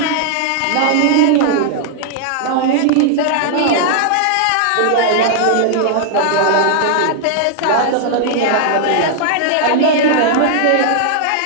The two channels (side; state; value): both; different; correlation -0.01